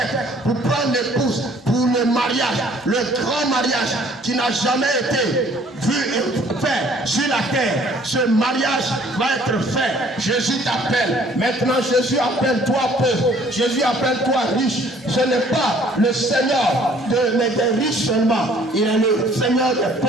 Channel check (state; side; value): normal; both; correlation 0.57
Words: pour prendre l'épouse, pour le mariage, le grand mariage qui n'a jamais été vu et fait sur la terre. Ce mariage va être fait. Jésus t'appelle. Maintenant, Jésus appelle toi pauvre. Jésus appelle toi riche. Ce n'est pas le Seigneur des riches seulement. Il est le Seigneur des